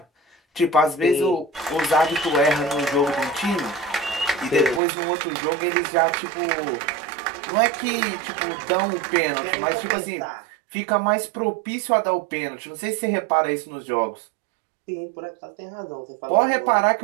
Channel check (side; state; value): left; drops out; at 4.8 s